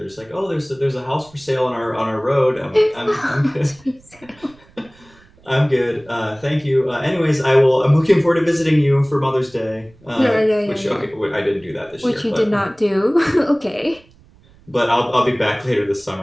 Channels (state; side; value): noise; right; rumble, 28 dB below the sound